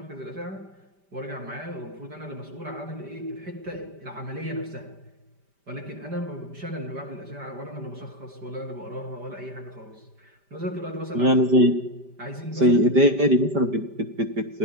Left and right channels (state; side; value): late; left; 5.1 ms